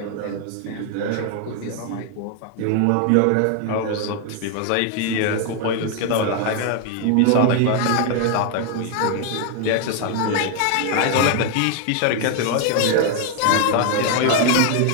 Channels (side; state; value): both; different; correlation 0.00